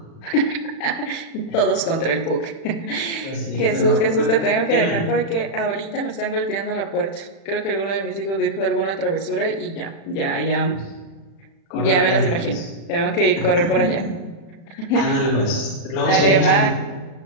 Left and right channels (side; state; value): right; late; 36 ms